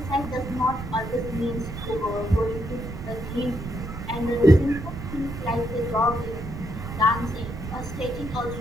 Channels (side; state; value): right; noise; rumble, 8 dB below the sound